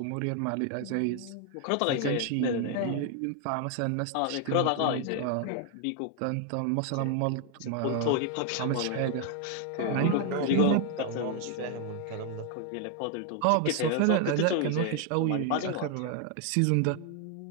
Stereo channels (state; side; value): different; both; correlation 0.00